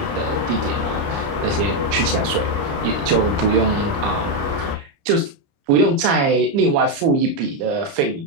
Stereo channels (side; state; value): left; late; 29 ms